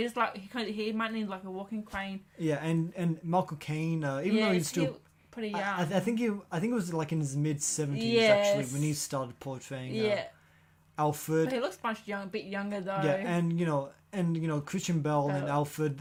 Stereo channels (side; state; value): both; identical; correlation 1.00